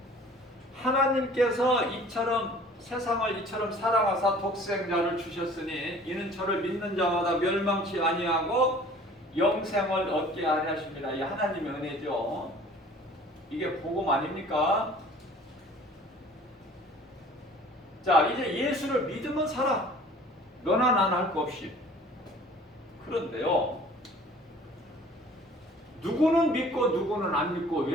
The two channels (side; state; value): both; normal; correlation 0.49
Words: 하나님께서 세상을 이처럼 사랑하사 독생자를 주셨으니 이는 저를 믿는 자마다 멸망치 아니하고 영생을 얻게 하려 하십니다. 이 하나님의 은혜죠. 이게 복음 아닙니까? 자, 이제 예수를 믿으면 살아. 너나 나나 할 거 없이. 그런데요, 누구는 믿고 누구는 안 믿고